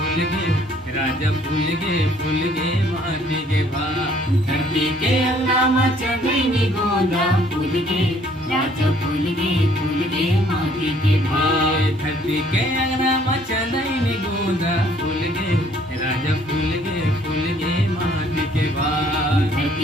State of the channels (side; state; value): both; normal; correlation 0.61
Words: फूल गे राजा फूल गे माटी के भा धरती के अंगना में चंदनी गोंदा फूल गे राजा फूल गे माटी के भाई। धरती के अंगना में चंदनी गोंदा फूल गे राजा फूल गे माटी के भा